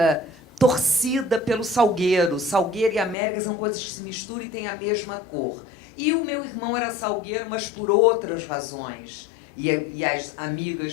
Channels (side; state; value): right; drops out; at 3.2 s